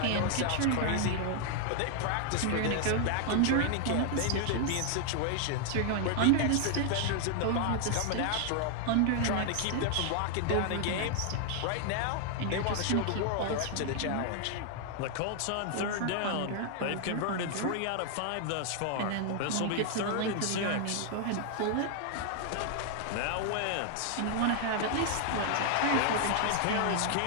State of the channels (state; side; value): different; both; correlation 0.00